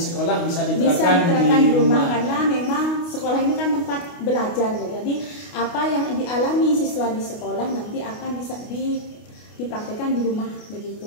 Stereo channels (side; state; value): right; late; 29 ms